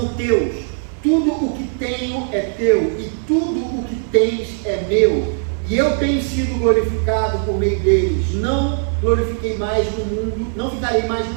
teus. Tudo o que tenho é teu, e tudo o que tens é meu, e eu tenho sido glorificado por meio deles. Não glorifiquei mais no mundo, não ficarei mais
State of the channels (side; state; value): left; silent; digital silence